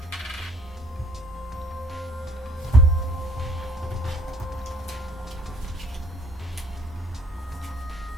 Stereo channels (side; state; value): both; normal; correlation 0.60